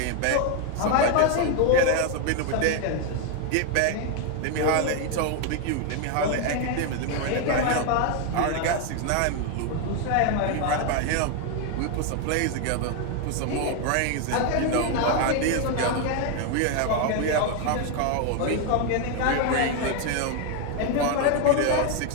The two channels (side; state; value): both; different; correlation 0.01